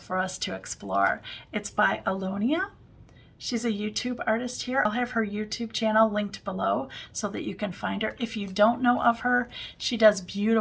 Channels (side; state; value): both; identical; correlation 1.00